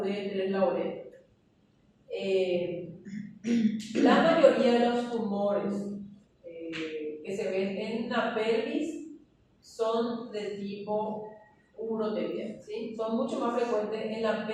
la uretra. La mayoría de los tumores que se ven en la pelvis son de tipo uroterial, ¿sí? Son mucho más frecuentes en la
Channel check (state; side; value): identical; both; correlation 1.00